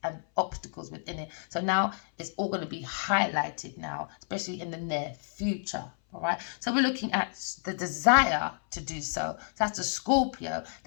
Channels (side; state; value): right; silent; 58 dB below the other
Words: and obstacles within it. So now it's all going to be highlighted now, especially in the near future. All right, so we're looking at the desire to do so. That's the Scorpio,